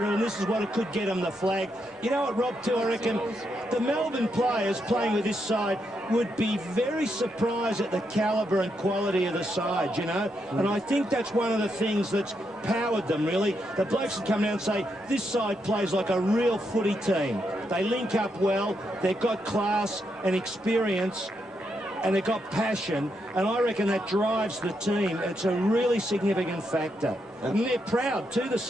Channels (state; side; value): normal; both; correlation 0.81